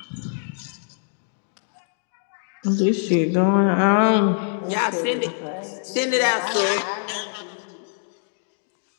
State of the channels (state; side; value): silent; right; digital silence